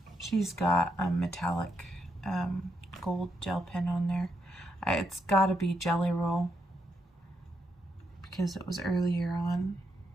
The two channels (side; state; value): both; normal; correlation 0.80